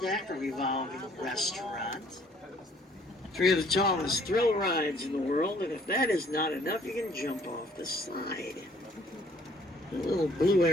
deck, a revolving restaurant. 3 of the tallest thrill rides in the world, and if that is not enough, you can jump off the side. The little blue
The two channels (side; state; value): both; normal; correlation 0.60